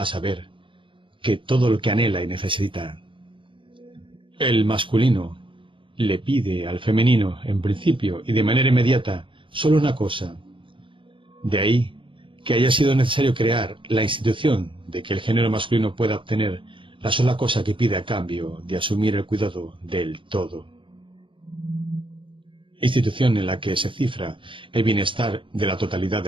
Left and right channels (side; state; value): left; late; 0.25 ms